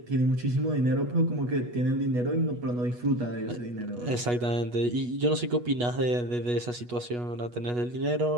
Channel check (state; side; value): late; left; 8.2 ms